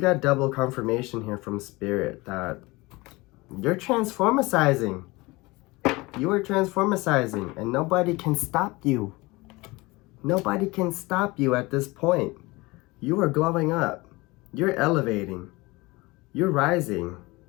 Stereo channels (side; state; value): right; quieter; 22.8 dB